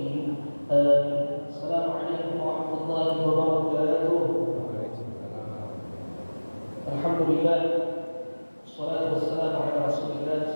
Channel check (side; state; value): both; inverted; correlation -1.00